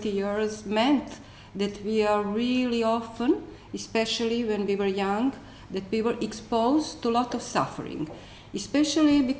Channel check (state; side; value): identical; both; correlation 1.00